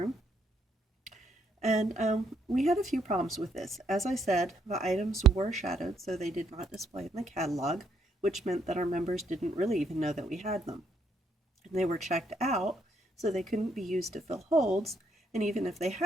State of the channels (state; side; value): normal; both; correlation 0.72